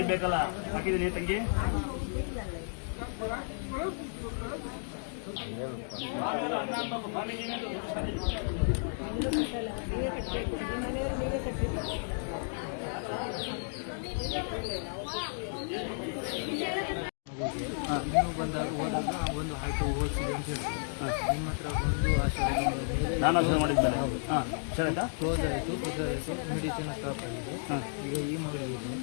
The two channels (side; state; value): right; silent; digital silence